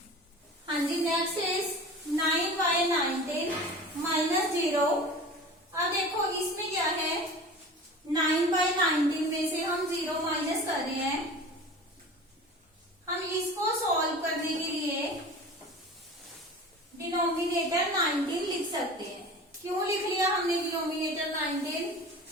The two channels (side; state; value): both; normal; correlation 0.37